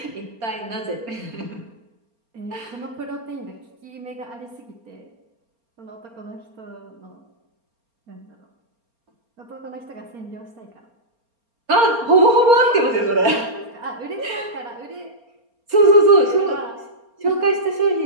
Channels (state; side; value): late; left; 4.3 ms